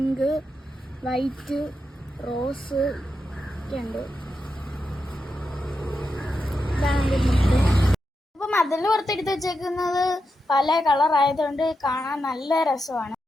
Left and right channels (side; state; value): both; normal; correlation 0.87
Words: വൈറ്റ്, റോസ് ഒക്കെ ഉണ്ട്. അപ്പൊ മതിലിന് പുറത്തെടുത്ത് വെച്ചേക്കുന്നത് പല കളർ ആയതുകൊണ്ട് കാണാൻ നല്ല രസമാണ്.